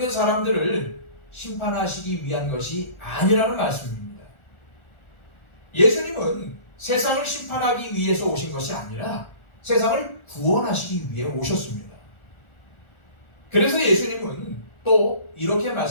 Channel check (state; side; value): late; right; 1.4 ms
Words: 사람들을 심판하시기 위한 것이 아니라는 말씀입니다. 예수님은 세상을 심판하기 위해서 오신 것이 아니라 세상을 구원하시기 위해 오셨습니다. 그래서 예수님은 또 이렇게